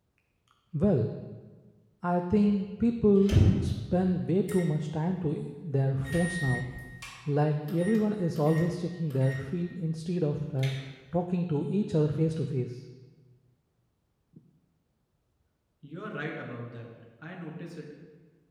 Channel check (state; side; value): identical; both; correlation 1.00